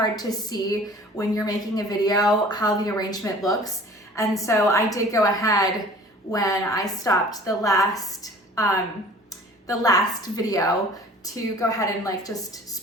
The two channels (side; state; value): both; normal; correlation 0.47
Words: to see when you're making a video how the arrangement looks. And so I did go ahead when I stopped the last video to go ahead and like just